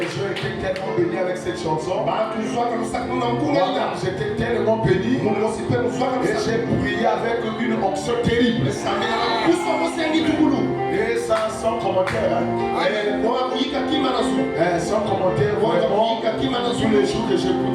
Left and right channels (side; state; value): both; identical; correlation 1.00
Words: gens étaient tellement bénis avec cette chanson. J'étais tellement béni. Et j'ai prié avec une onction terrible. Et ça, sans commentaire. Sans commentaire, vraiment. Tous les jours que j'écoute